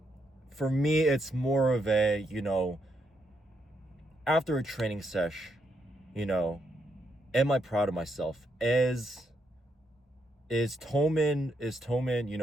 for me, it's more of a, you know, after a training sesh, you know, am I proud of myself? Is Toman, you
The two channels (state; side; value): normal; both; correlation 0.79